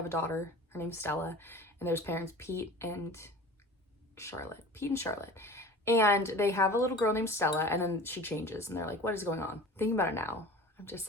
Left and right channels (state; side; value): normal; both; correlation 0.40